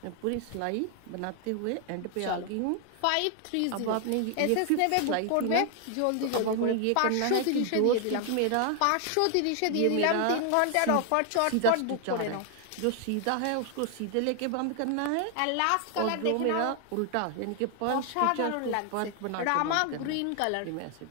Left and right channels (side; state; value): both; different; correlation 0.00